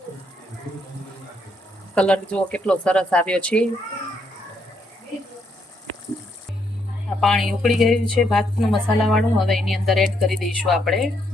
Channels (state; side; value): normal; both; correlation 0.74